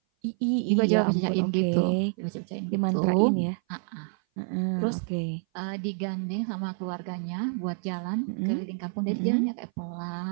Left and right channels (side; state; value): left; silent; 57 dB below the other